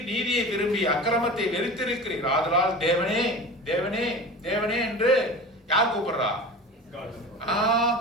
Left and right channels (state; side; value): normal; both; correlation 0.34